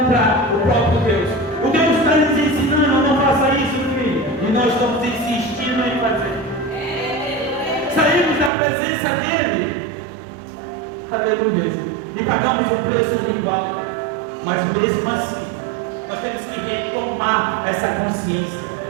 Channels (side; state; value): left; drops out; at 8.5 s